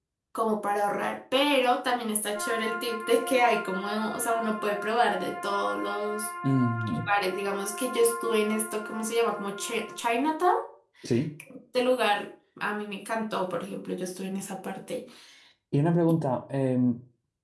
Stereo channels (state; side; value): identical; both; correlation 1.00